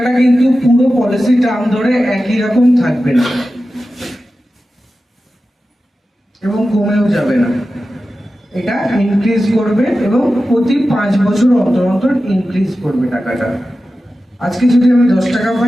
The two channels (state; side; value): normal; both; correlation 0.93